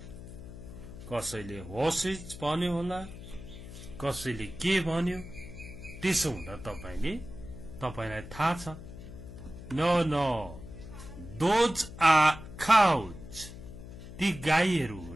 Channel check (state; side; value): noise; left; hum, 13 dB below the sound